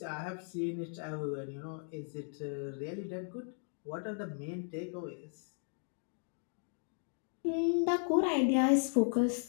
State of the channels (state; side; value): silent; right; 54 dB below the other